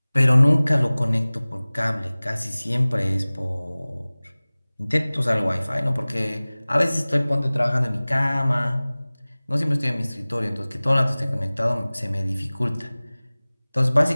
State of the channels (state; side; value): inverted; both; correlation -0.99